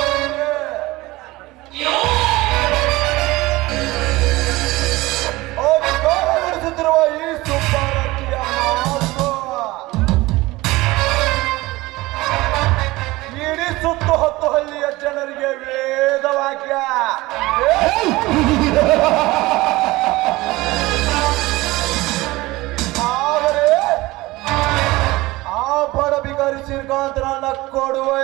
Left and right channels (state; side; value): quieter; left; 20.0 dB